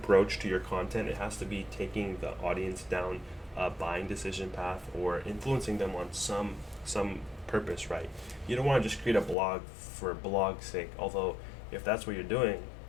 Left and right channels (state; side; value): drops out; right; at 9.3 s